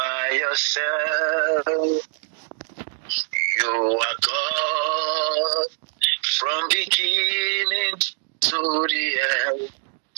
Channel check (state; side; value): silent; left; digital silence